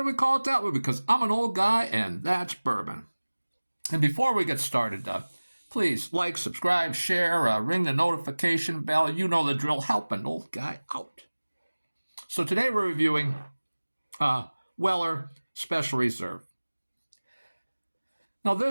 we call it that? Well, because I'm an old guy and that's bourbon. And before we get started, please like, subscribe, share, ring the notification bell. You know the drill. Help an old guy out. So today we're reviewing Weller Special Reserve. Now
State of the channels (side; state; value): both; inverted; correlation -1.00